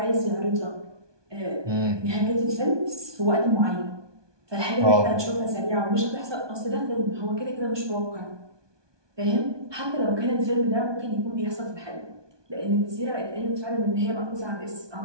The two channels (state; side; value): late; left; 1.2 ms